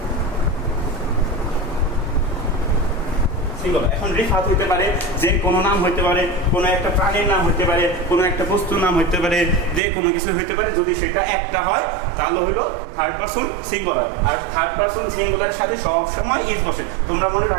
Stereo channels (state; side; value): drops out; left; at 9.8 s